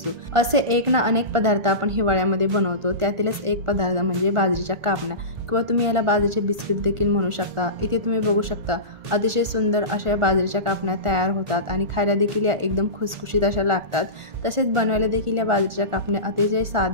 असे एक ना अनेक पदार्थ आपण हिवाळ्यामध्ये बनवतो। त्यातीलच एक पदार्थ म्हणजे बाजरीच्या कापण्या किंवा तुम्ही याला बाजरीचे बिस्किट देखील म्हणू शकता। इथे तुम्ही बघू शकता अतिशय सुंदर अशा बाजरीच्या कापण्या तयार होतात आणि खायला देखील या एकदम खुसखुशीत अशा लागतात। तसेच बनवायला देखील या बाजरीच्या कापण्या अतिशय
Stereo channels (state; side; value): late; left; 1.5 ms